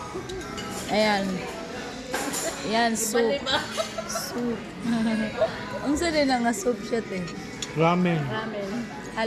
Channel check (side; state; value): both; identical; correlation 1.00